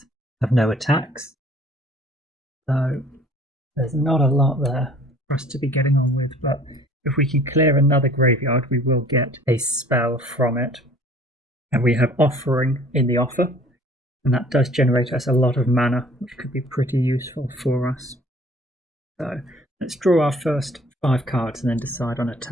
have no attacks. So there's not a lot there for us to be getting on with, but if we can clear another graveyard, we will get a spell from it. And we have Offering in the offer, and that does generate us a lot of mana, which could be pretty useful for us. So let's draw our first 5 cards and then decide on a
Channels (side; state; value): both; normal; correlation 0.52